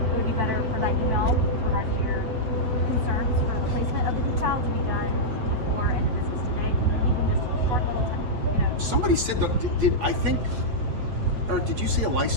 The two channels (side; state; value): left; late; 8.3 ms